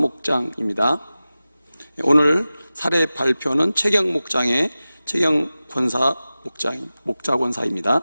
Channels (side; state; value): both; inverted; correlation -0.96